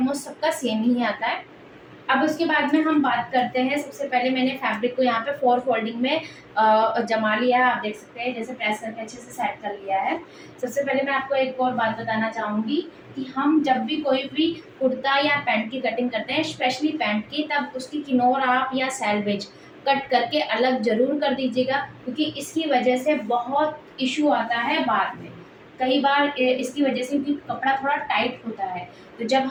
सबका सेम ही आता है। अब उसके बाद में हम बात करते हैं। सबसे पहले मैंने फैब्रिक को यहाँ पे 4 फोल्डिंग में जमा लिया है। आप देख सकते हैं जैसे प्रेस करके अच्छे से सेट कर लिया है। सबसे पहले मैं आपको एक और बात बताना चाहूँगी कि हम जब भी कोई भी कुर्ता या पैंट की कटिंग करते हैं, स्पेशली पैंट की, तब उसकी किनोर आप या सैलवेज कट करके अलग ज़रूर कर दीजिएगा, क्योंकि इसकी वजह से बहुत इशू आता है बाद में। कई बार इसकी वजह से, क्योंकि कपड़ा थोड़ा टाइट होता है, तो जब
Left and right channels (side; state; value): both; identical; correlation 1.00